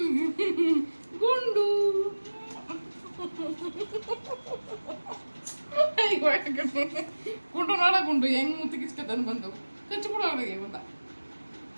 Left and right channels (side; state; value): both; inverted; correlation -1.00